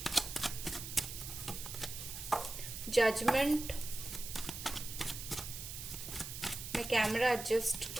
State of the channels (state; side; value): noise; right; hiss, 8 dB below the sound